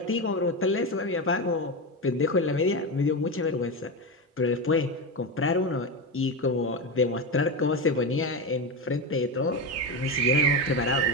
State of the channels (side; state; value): both; normal; correlation 0.16